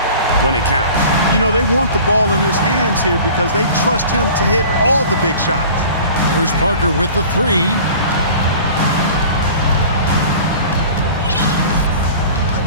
when it counts. You know, they want the ball in his hands here because they trust him to hit all the big shots. There's Parker with the 3.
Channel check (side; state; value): both; inverted; correlation -0.43